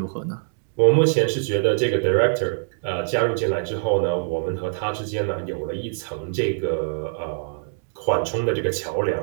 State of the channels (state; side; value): silent; left; digital silence